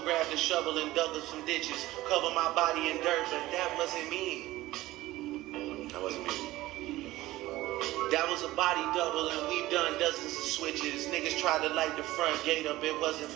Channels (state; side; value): quieter; left; 17.1 dB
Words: grabbed a shovel and dug up some ditches. Cover my body in dirt, but that wasn't me. That wasn't me. That was a body double, and we've done dozens of switches. Niggas tried to light the front gate up, it wasn't